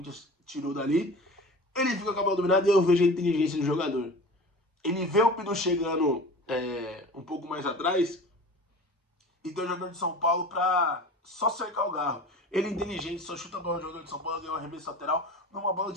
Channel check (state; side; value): normal; both; correlation 0.38